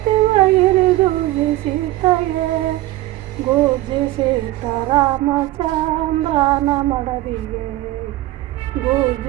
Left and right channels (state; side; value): quieter; left; 17.0 dB